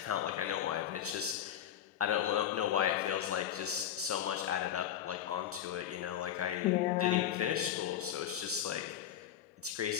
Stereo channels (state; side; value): quieter; right; 10.4 dB